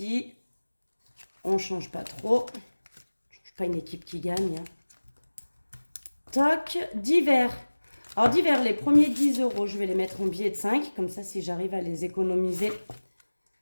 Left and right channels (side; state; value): both; inverted; correlation -1.00